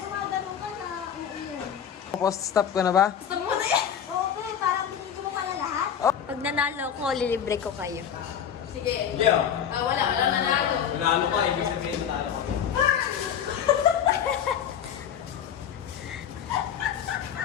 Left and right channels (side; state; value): right; quieter; 8.5 dB